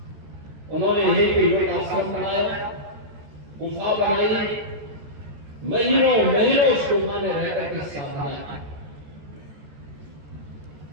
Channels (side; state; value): left; late; 14 ms